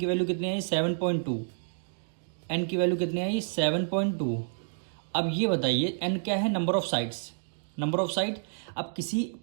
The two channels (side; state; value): left; silent; digital silence